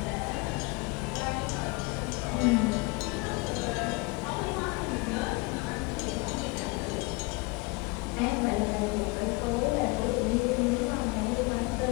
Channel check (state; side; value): quieter; right; 26.6 dB